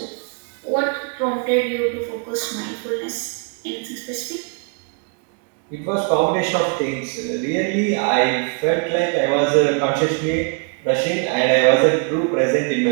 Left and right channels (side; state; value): left; quieter; 37.4 dB